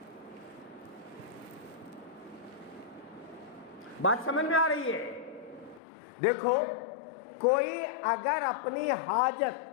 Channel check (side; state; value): right; drops out; at 5.8 s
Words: بات سمجھ میں آ رہی ہے؟ دیکھو، کوئی اگر اپنی حاجت،